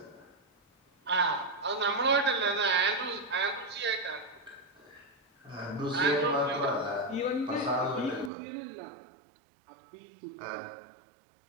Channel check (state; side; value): drops out; left; at 8.3 s